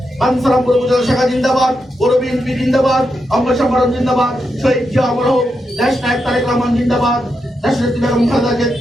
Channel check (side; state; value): both; normal; correlation 0.85